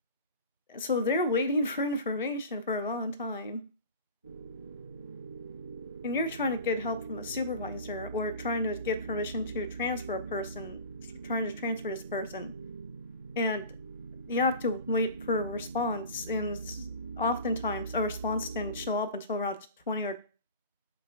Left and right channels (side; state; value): both; inverted; correlation -0.36